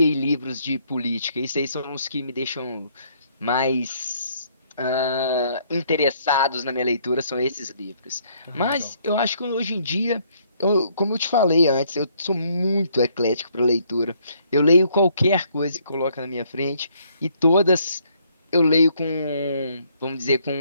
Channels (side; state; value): both; inverted; correlation -0.67